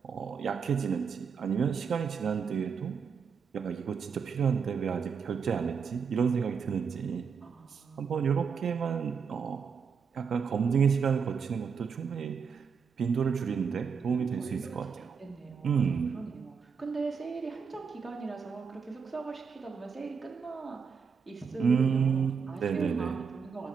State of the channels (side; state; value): left; quieter; 6.1 dB